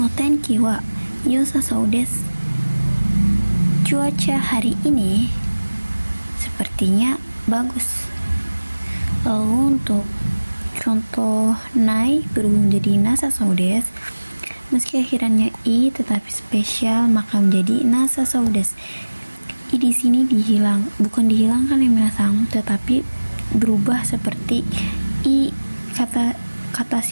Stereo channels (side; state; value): both; inverted; correlation -1.00